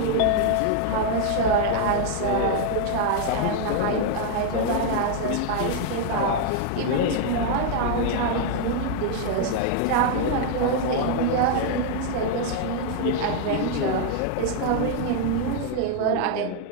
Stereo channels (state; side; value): different; both; correlation 0.00